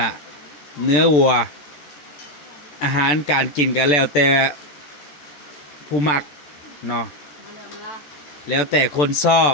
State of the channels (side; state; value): right; late; 14 ms